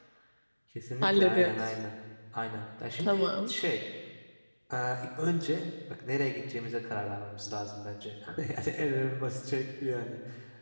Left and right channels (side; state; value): both; inverted; correlation -1.00